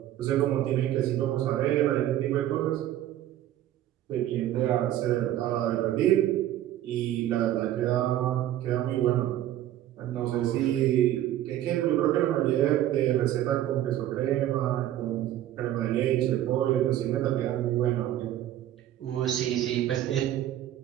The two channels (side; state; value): left; quieter; 12.7 dB